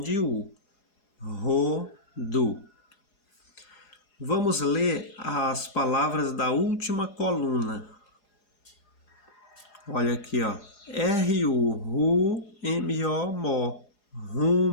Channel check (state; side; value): late; right; 4.8 ms